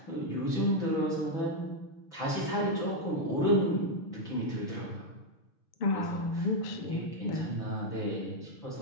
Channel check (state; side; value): late; right; 6.9 ms